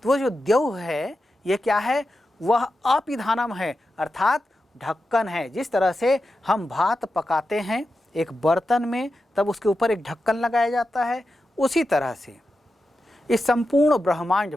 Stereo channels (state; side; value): normal; both; correlation 0.90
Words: तो वो जो द्यौः है ये क्या है, वह अपिधानम है, अर्थात ढक्कन है। जिस तरह से हम भात पकाते हैं एक बर्तन में तब उसके ऊपर एक ढक्कन लगाया जाता है, उसी तरह से इस संपूर्ण ब्रह्मांड